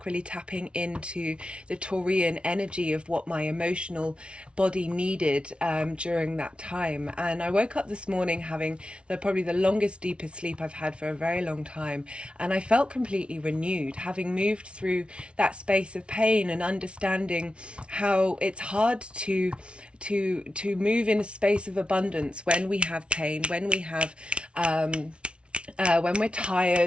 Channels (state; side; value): late; left; 0.059 ms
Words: really tapping into the Taurian energy of what my emotional body needed during that time. And I woke up this morning having probably the longest, deepest sleep I've had for a very long time. And I felt completely renewed, having moved through that space of pain and understanding how it's hard to move in a space of abundance when we have pain, when we have when we're